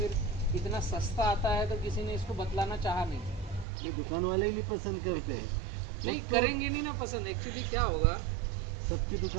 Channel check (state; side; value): drops out; left; at 3.7 s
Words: इतना सस्ता आता है तो किसी ने इसको बतलाना चाहा नहीं। ये दुकान वाले ही नहीं पसंद करते हैं। नहीं वो तो करेंगे नहीं ना पसंद। एक्चुअली क्या होगा, सबकी